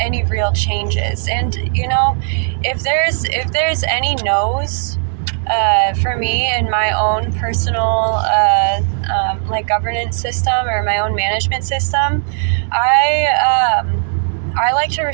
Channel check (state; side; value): silent; left; digital silence